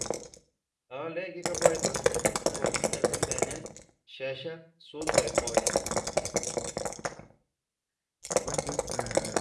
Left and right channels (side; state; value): both; identical; correlation 1.00